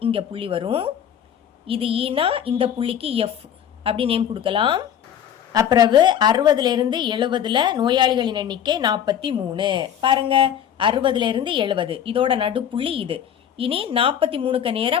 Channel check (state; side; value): quieter; right; 9.4 dB